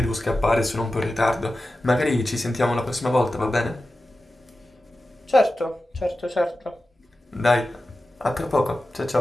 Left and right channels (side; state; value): both; normal; correlation 0.93